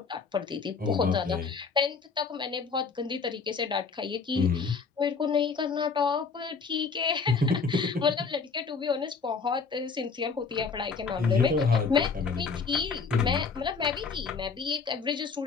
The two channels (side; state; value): right; quieter; 5.0 dB